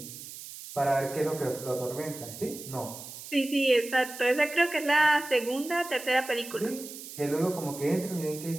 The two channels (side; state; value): right; noise; hiss, 13 dB below the sound